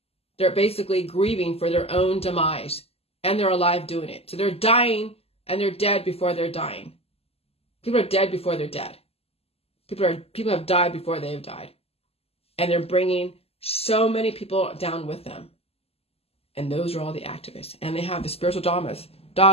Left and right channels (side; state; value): right; late; 0.29 ms